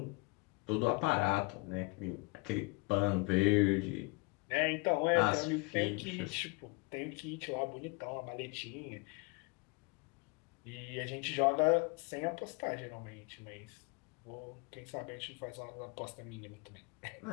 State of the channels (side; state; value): right; quieter; 28.5 dB